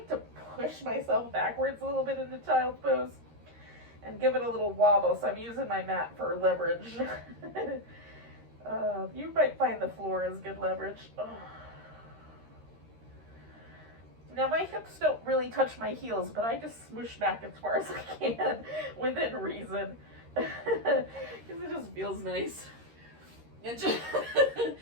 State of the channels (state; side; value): late; left; 13 ms